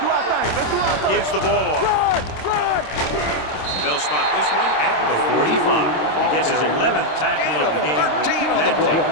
our thing. Gives the ball off. Run. They'll spot this one at the 45. He gets his 11th tackle of the game with that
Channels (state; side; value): late; right; 26 ms